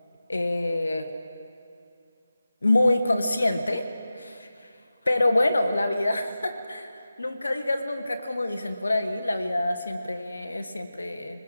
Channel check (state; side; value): inverted; both; correlation -0.94